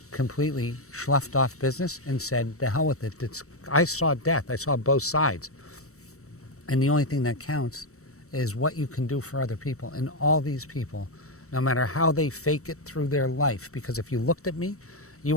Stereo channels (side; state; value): right; late; 0.64 ms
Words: completely sloughed off business and said, the hell with it. I saw death. I saw both sides. And the only thing that counts is what you can do for other people. And all these people, no matter how they fake it through their life, because if you looked at me, you